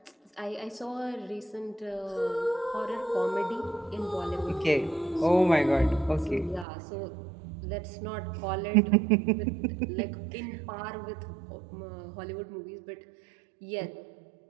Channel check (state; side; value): drops out; left; at 6.7 s